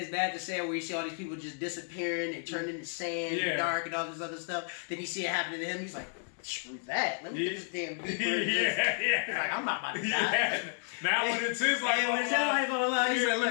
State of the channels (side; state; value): right; silent; 57 dB below the other